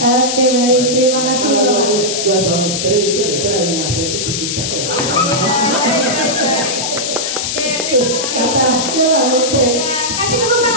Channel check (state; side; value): noise; left; hiss, 2 dB below the sound